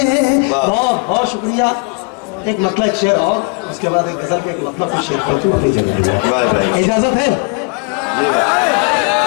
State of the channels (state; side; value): quieter; right; 32.3 dB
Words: वाह। बहुत बहुत शुक्रिया। एक मतलब एक शेर और उसके बाद एक गजल के एक मतलब का शेर पढ़ती हूँ अपनी जगह। वाह भाई, इजाजत है? जी भाई,